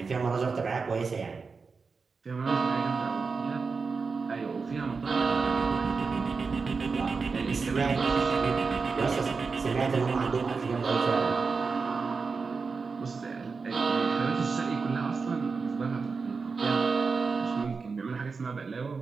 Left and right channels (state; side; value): quieter; left; 4.8 dB